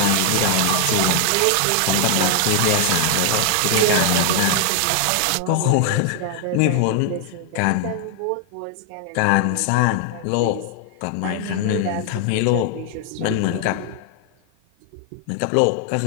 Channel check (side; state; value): both; different; correlation 0.00